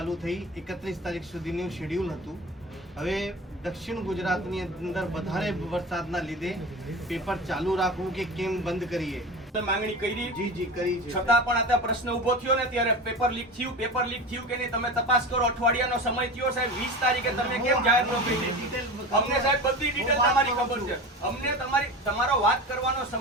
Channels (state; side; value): normal; both; correlation 0.30